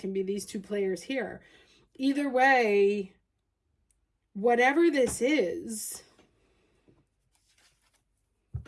be these two players here. Either way, whatever this is,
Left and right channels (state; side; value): identical; both; correlation 1.00